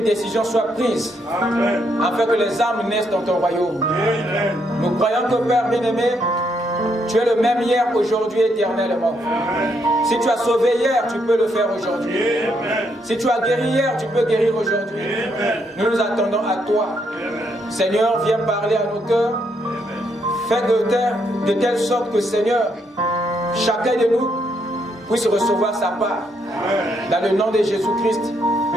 décision soit prise afin que les âmes naissent dans ton royaume. Nous croyons que Père bien-aimé, tu es le même hier, aujourd'hui, éternellement. Si tu as sauvé hier, tu peux le faire aujourd'hui. Si tu as guéri hier, tu peux guérir aujourd'hui. Nous nous attendons à toi. Seigneur, viens parler à nos cœurs. Fais de telle sorte que, Seigneur, chacun de nous puisse recevoir sa part. Dans le nom de Jésus-Christ,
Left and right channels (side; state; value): both; normal; correlation 0.75